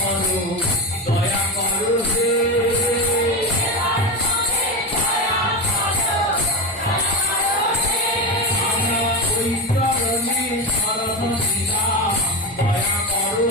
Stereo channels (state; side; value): normal; both; correlation 0.19